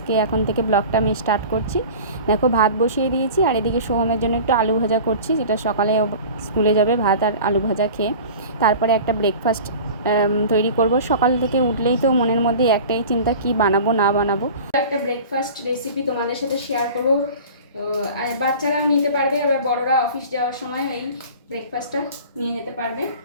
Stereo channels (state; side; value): inverted; both; correlation -0.39